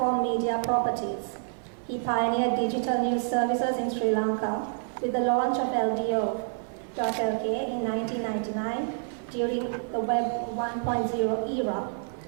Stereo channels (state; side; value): silent; left; 59 dB below the other